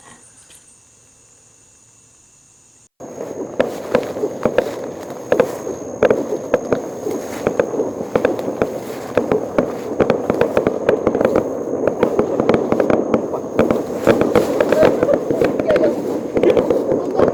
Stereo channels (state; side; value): identical; both; correlation 1.00